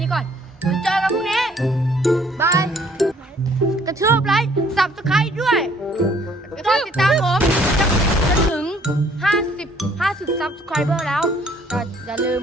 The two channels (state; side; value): normal; both; correlation 0.60